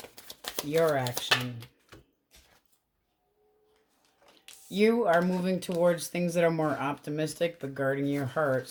Your action. You are moving towards things that are more optimistic, but guarding your heart.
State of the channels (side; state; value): both; identical; correlation 1.00